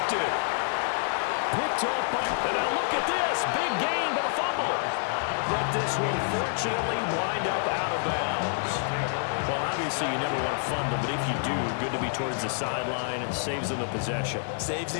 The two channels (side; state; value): right; silent; 59 dB below the other